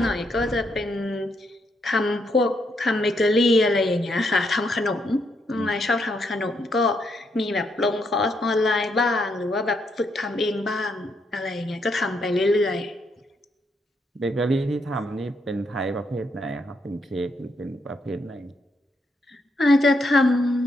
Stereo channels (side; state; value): both; normal; correlation 0.77